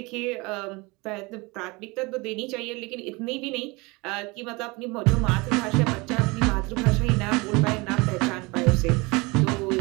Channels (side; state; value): left; quieter; 25.4 dB